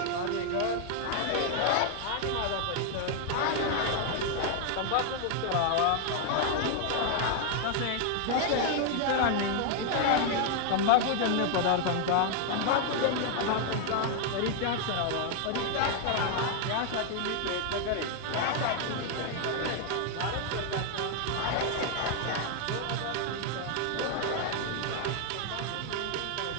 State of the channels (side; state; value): both; different; correlation 0.00